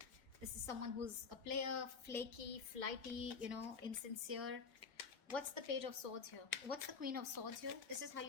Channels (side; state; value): right; quieter; 5.4 dB